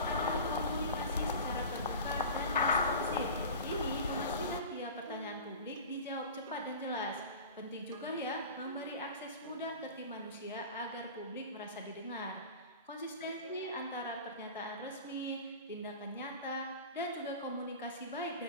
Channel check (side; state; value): both; inverted; correlation -0.35